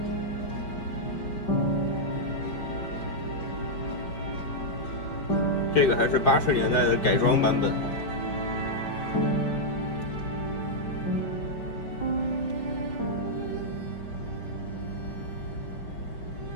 这个还是80年代的改装版本。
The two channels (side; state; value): right; late; 5.2 ms